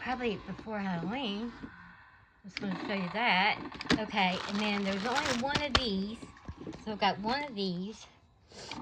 before Halloween. I was going to show you that. Okay, and then there's only one of these. So I've got one of these.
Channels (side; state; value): both; identical; correlation 1.00